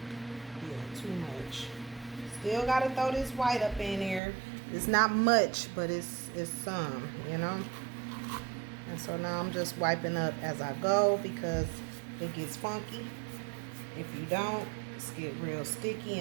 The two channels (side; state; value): left; drops out; at 4.2 s